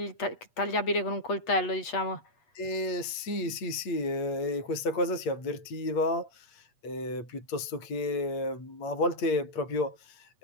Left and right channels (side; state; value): right; late; 8.6 ms